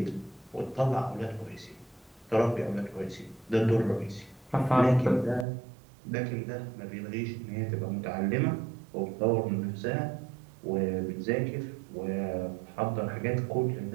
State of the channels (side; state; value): left; drops out; at 5.5 s